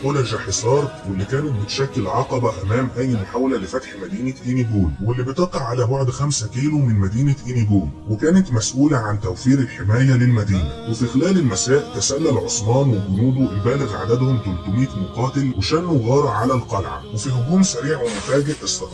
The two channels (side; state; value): both; identical; correlation 1.00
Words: قلج حصار، واللي كانت بتشكل عقبة أمام أي محاولة لفتح مدينة إينيجول، واللي بتقع على بعد 5 كيلو من مدينة إينيجول، وكانت مسؤولة عن توفير الحماية للمدينة. وفي خلال المساء تسلل عثمان وجنوده البالغ عددهم 300 مقاتل وشنوا غارة على القلعة، وفي هجوم سريع ومفاجئ